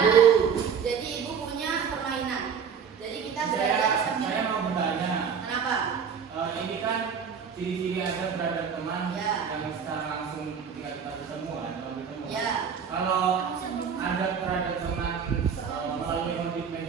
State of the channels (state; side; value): quieter; left; 6.9 dB